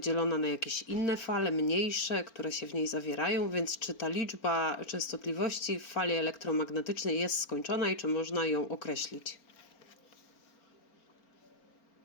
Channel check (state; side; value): late; right; 4.4 ms